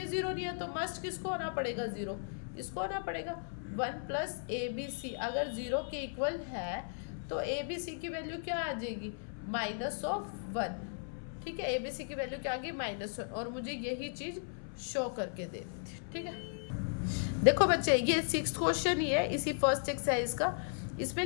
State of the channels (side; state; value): right; silent; 54 dB below the other